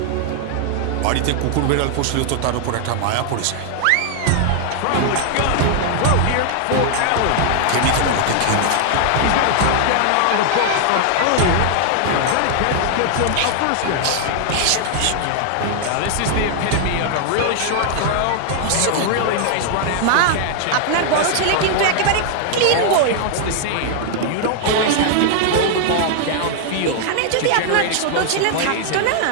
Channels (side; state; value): both; different; correlation 0.00